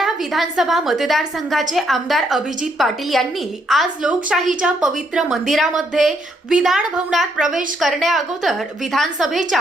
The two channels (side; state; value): both; normal; correlation 0.73